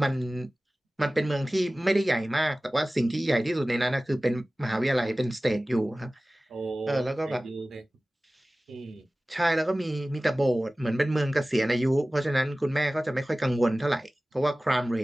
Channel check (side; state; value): both; normal; correlation 0.97